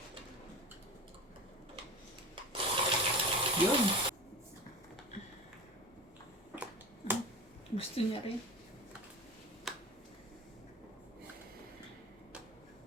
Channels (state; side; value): normal; both; correlation 0.31